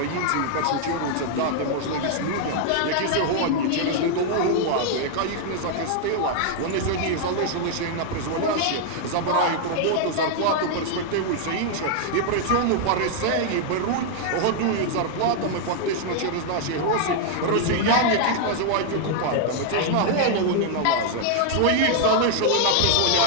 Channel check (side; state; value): both; different; correlation 0.00